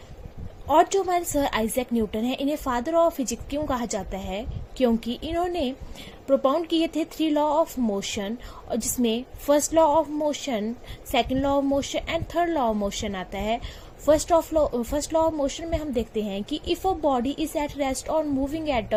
और जो हमारे सर आइजैक न्यूटन है, इन्हें फादर ऑफ फिजिक्स क्यों कहा जाता है? क्योंकि इन्होंने प्रोपाउंड किए थे 3 लॉ ऑफ मोशन, और जिसमें first law of motion, second law of motion and third law of motion आता है। फर्स्ट लॉ ऑफ मोशन में हम देखते हैं कि if a body is at rest और moving at a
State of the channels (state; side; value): identical; both; correlation 1.00